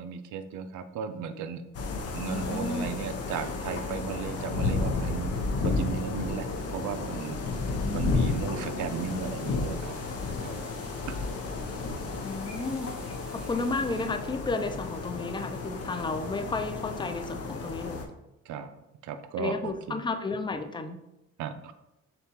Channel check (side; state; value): both; normal; correlation 0.40